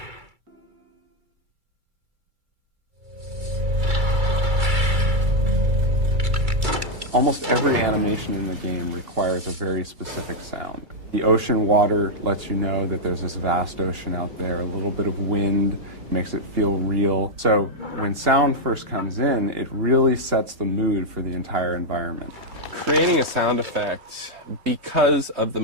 Almost every animation in the game requires a very specific sound. The ocean water lets you know that there's this vast ocean out there. A little bit of wind makes it feel real. So when sound first comes in, it really sets the mood for the entire environment. Creating a sound effect, because of the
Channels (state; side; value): late; left; 2.3 ms